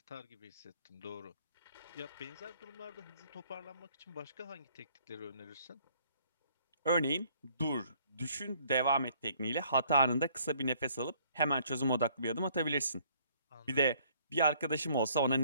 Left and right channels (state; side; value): inverted; both; correlation -0.61